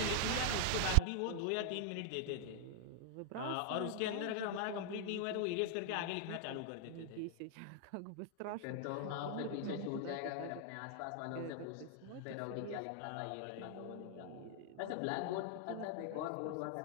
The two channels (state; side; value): different; both; correlation 0.00